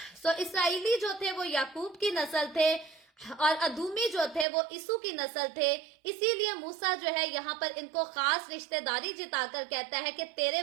सो इसराइली जो थे वो याकूब की नस्ल थे और अदूमी जो थे वो इसू की नस्ल थे। इसीलिए मूसा जो है यहाँ पर इनको खास रिश्तेदारी जिताकर कहता है कि तेरे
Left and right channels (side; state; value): left; drops out; at 4.5 s